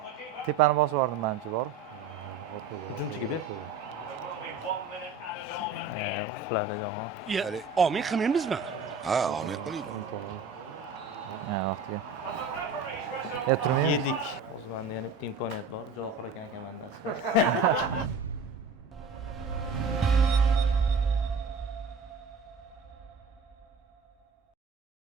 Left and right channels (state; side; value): quieter; left; 4.3 dB